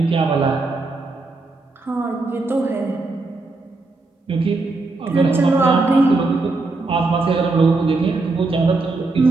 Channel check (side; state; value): left; quieter; 3.4 dB